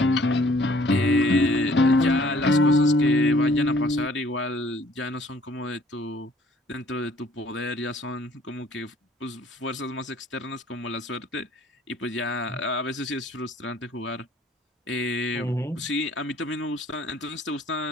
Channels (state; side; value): normal; both; correlation 0.58